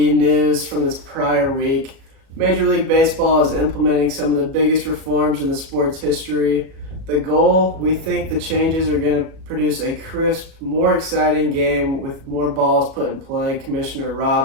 news from this prior week. Major League Baseball is implementing some of the biggest reforms in the sport's history. The goal, we think the changes are going to produce a crisp, more exciting game with more balls put in play, Commissioner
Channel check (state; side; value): late; left; 37 ms